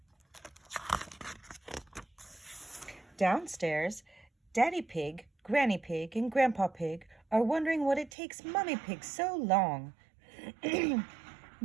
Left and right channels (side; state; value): left; drops out; at 8.1 s